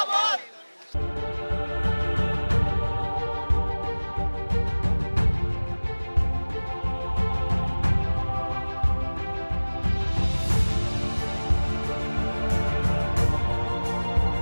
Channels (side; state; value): both; inverted; correlation -1.00